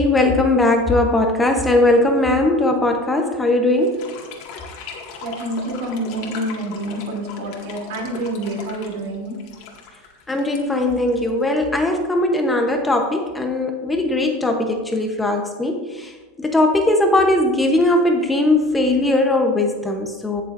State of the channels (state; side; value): normal; both; correlation 0.48